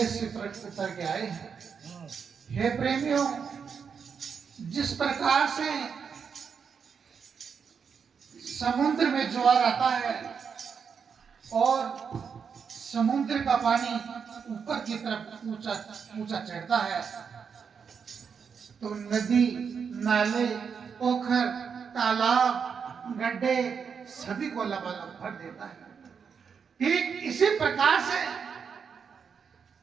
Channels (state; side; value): quieter; left; 6.4 dB